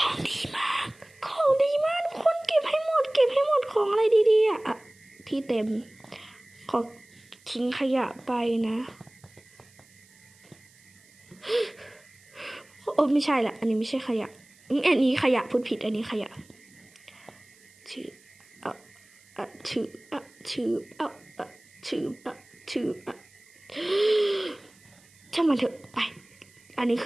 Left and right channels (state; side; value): noise; right; hiss, 28 dB below the sound